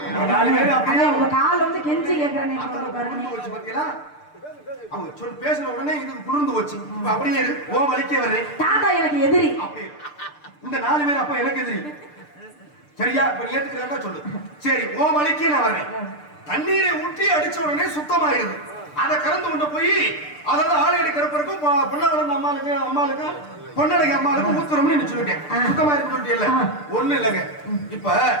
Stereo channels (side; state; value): right; late; 6.7 ms